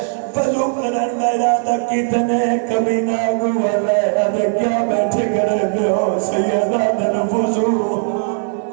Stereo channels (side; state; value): left; silent; digital silence